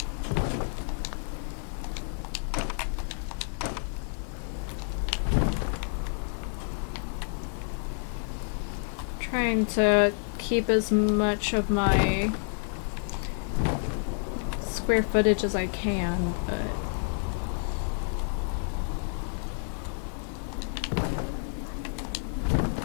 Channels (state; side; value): silent; right; 57 dB below the other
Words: Trying to keep as much of my square footage as I can, but